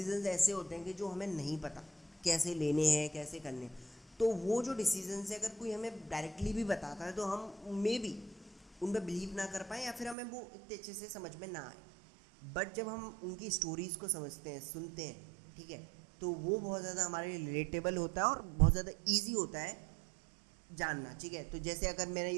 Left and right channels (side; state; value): left; drops out; at 10.2 s